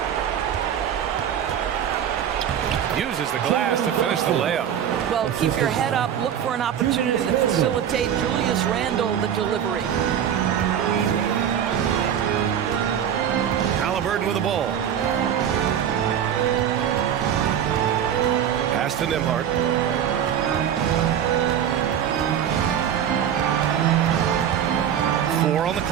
Uses the glass to finish the layup. Well, keep your head up. Look for an opportunity to facilitate Julius Randle the delivery. Halliburton with the ball. Pass to Nembhard. Four on the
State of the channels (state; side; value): quieter; left; 9.3 dB